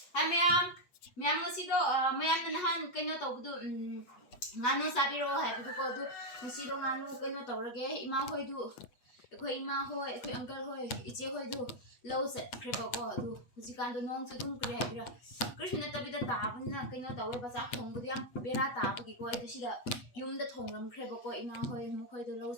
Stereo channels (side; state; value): right; late; 8.2 ms